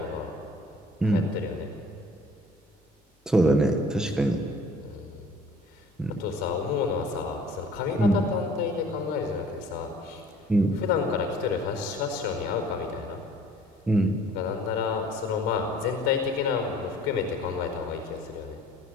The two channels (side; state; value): both; normal; correlation 0.52